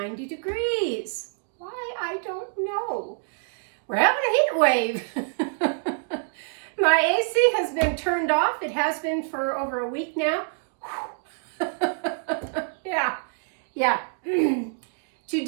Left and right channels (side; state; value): left; silent; digital silence